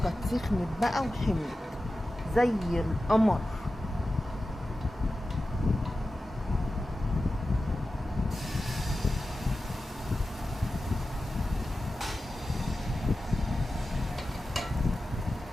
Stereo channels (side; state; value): both; normal; correlation 0.94